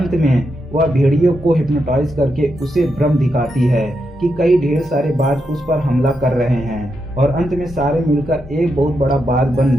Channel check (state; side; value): normal; both; correlation 0.84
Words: में वह भेड़ियों को हिप्नोटाइज करके उसे भ्रम दिखाती है कि कई ढेर सारे बाज उस पर हमला कर रहे हैं और अंत में सारे मिलकर एक बहुत बड़ा बाज बन